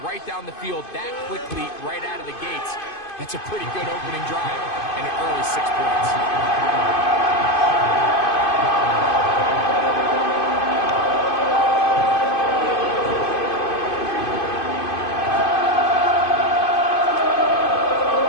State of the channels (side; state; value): right; late; 2.5 ms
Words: right down the field that quickly, right out of the gates, that's a pretty good opening drive and an early 6 points.